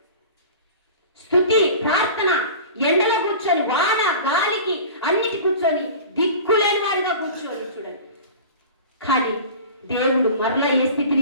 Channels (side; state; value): both; inverted; correlation -0.38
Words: స్తుతి, ప్రార్థన, ఎండలో కూర్చొని, వాన గాలికి అన్నిటి కూర్చొని, దిక్కులేని వాడిగా కూర్చొని చూడండి. కానీ దేవుడు మరలా ఏ